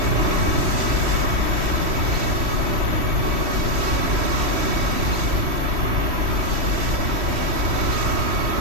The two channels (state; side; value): late; left; 3.1 ms